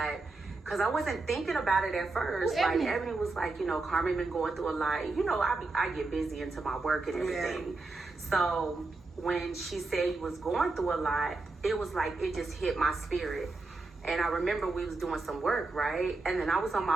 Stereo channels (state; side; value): quieter; left; 3.5 dB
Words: because I wasn't thinking about it at first. Like Ebony was like, you know, Carmen been going through a lot. You know, I get busy into my work and everything. Yeah. So when she said you was going through a lot, it was like it just hit my spirit. And I remember we was doing some work, right? And then I was on